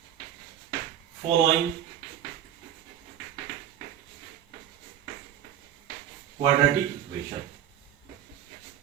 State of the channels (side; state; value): left; quieter; 10.2 dB